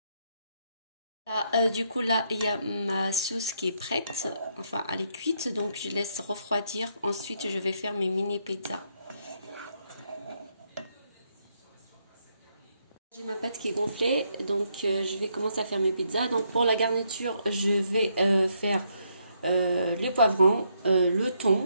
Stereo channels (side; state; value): both; inverted; correlation -0.75